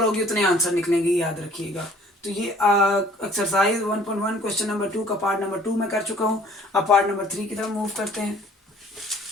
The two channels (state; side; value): normal; both; correlation 0.54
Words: होगी उतने आंसर निकलेंगे, याद रखिएगा। तो ये एक्सरसाइज 1.1 क्वेश्चन नंबर 2 का पार्ट नंबर 2 में कर चुका हूँ। अब पार्ट नंबर 3 की तरफ मूव करते हैं।